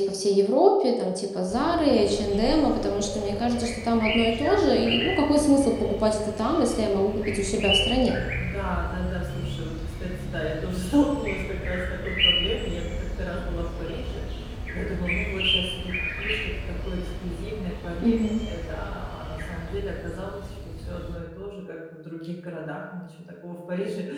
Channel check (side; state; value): both; identical; correlation 1.00